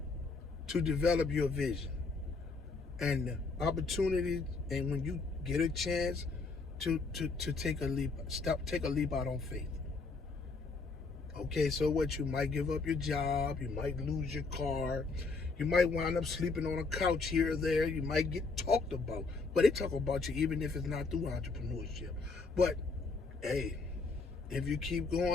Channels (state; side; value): quieter; right; 4.2 dB